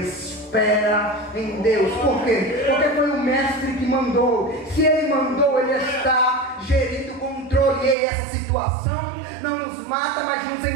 em Deus. Por quê? Porque foi o Mestre que mandou. Se Ele mandou, Ele está gerindo o controle. E essa situação não nos mata, mas nos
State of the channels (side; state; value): left; drops out; at 8.0 s